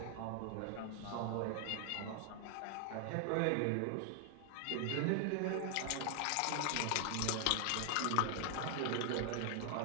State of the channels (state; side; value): different; both; correlation 0.00